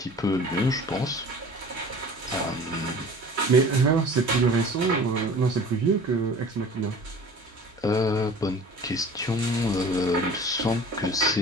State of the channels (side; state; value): both; normal; correlation 0.43